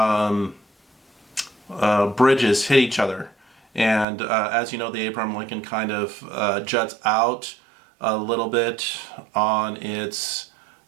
bridges hit each other, And as you know, the Abraham Lincoln kind of juts out a little bit on its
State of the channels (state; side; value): drops out; left; at 4.0 s